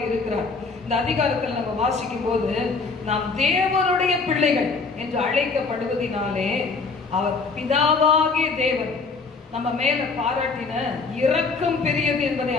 இருக்கிறார். இந்த அதிகாரத்தில் நம்ம வாசிக்கும் போது, நாம் தேவனுடைய பிள்ளைகள் என்று அழைக்கப்படுவதினாலே அவர் பிதாவாகிய தேவன் நம்ம மேல பாராட்டின இரக்கம் பெரியது என்பதை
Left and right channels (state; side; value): quieter; right; 4.4 dB